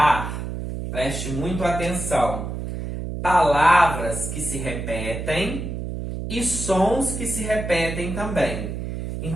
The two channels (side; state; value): right; noise; hum, 5 dB below the sound